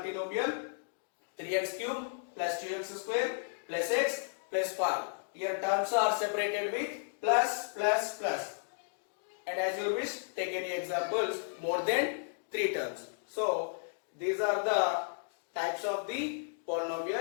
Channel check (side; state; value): right; silent; digital silence